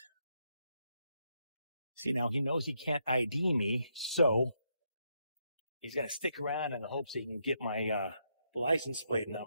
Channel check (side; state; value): both; inverted; correlation -0.78